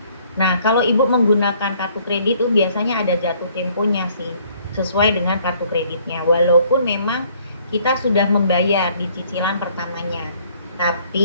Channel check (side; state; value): both; inverted; correlation -0.62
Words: Nah, kalau Ibu menggunakan kartu kredit itu biasanya ada jatuh temponya sih, sesuai dengan kartu kreditnya. Walaupun memang kita sudah membayar di cicilan pertamanya.